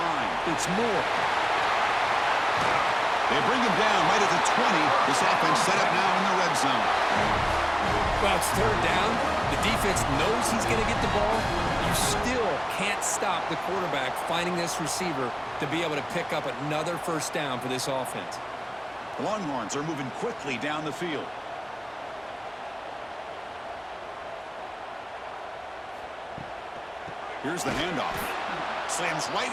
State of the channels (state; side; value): identical; both; correlation 1.00